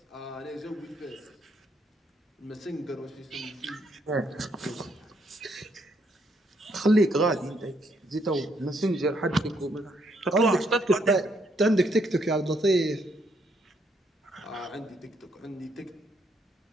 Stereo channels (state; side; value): normal; both; correlation 0.72